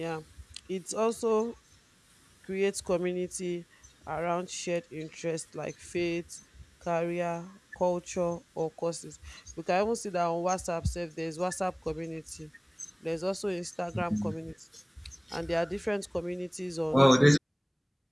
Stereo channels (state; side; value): identical; both; correlation 1.00